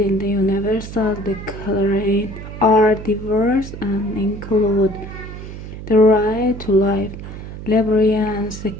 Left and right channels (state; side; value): noise; right; hum, 11 dB below the sound